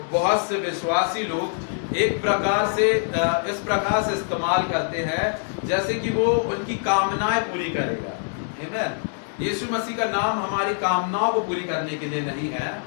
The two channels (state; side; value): silent; right; digital silence